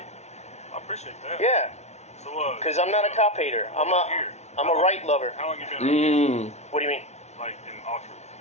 I appreciate that. Yeah, So, because I'm not a cop hater. I'm a right lover. How long you been around here? What do you mean? Like in Oxford?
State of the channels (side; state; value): right; late; 0.32 ms